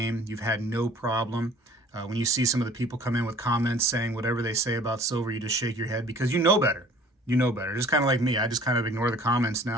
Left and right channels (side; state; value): both; normal; correlation 0.51